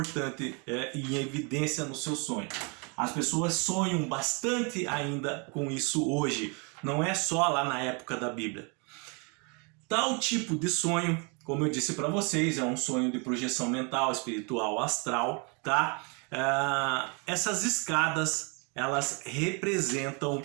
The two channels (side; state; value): left; quieter; 33.3 dB